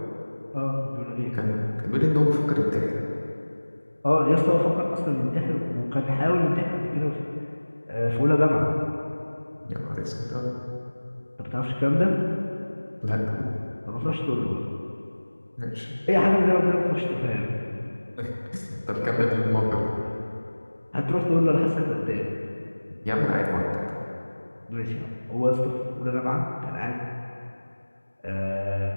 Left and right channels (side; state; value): both; inverted; correlation -1.00